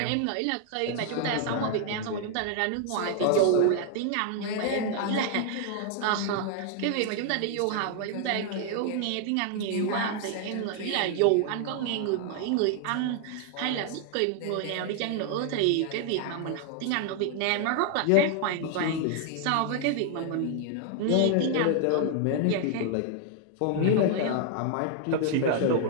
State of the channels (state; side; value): different; both; correlation 0.00